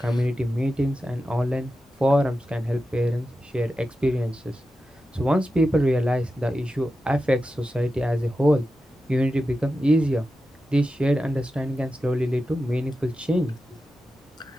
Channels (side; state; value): both; normal; correlation 0.91